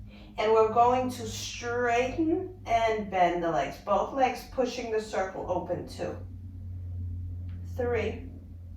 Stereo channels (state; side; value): identical; both; correlation 1.00